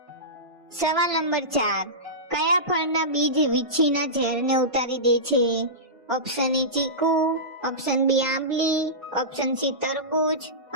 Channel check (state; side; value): late; left; 1.5 ms